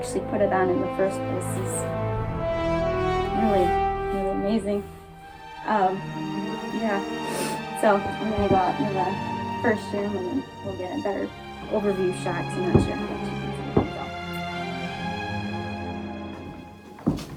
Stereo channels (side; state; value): both; identical; correlation 1.00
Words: put it on in the first place is really, really amazing. Yeah. So I'm gonna go out into the first room and then we'll get a better overview shot. I'm not sure how much you can